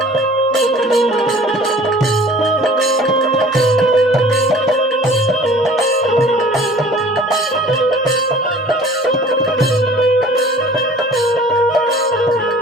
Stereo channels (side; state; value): both; normal; correlation 0.48